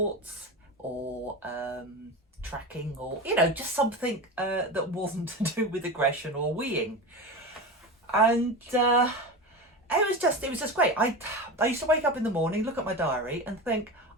or tracking, or just something that wasn't to do with aggression or weeing. And it was just great. I used to wake up in the morning, look at my diary and think,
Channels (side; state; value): both; normal; correlation 0.24